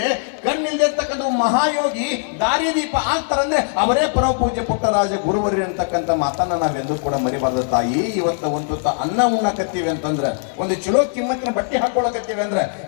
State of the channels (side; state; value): right; silent; digital silence